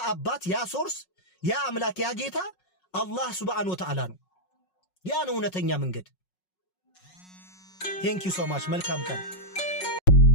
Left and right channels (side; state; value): right; late; 5.4 ms